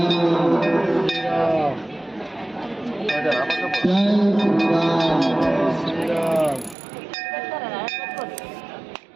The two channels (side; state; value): left; drops out; at 6.8 s